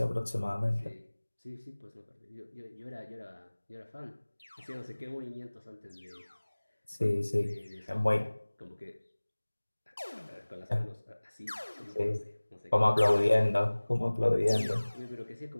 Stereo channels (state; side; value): inverted; both; correlation -1.00